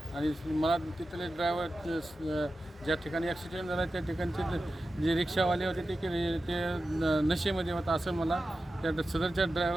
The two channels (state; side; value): normal; both; correlation 0.92